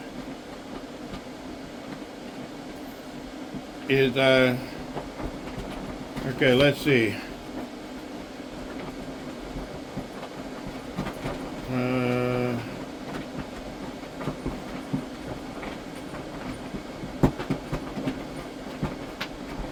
is okay, let's see.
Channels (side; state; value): both; identical; correlation 1.00